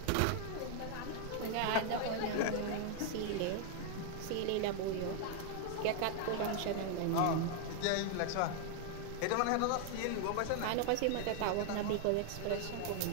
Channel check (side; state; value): both; different; correlation 0.00